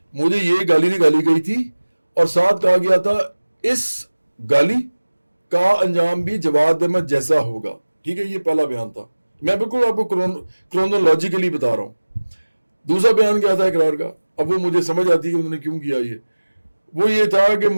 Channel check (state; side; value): inverted; both; correlation -1.00